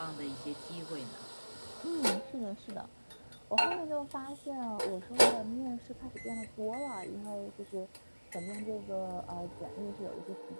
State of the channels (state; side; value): inverted; both; correlation -1.00